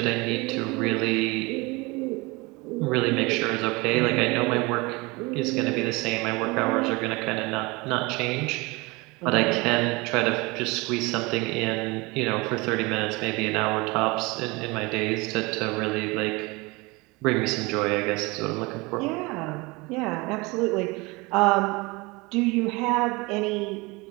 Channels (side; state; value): left; quieter; 24.8 dB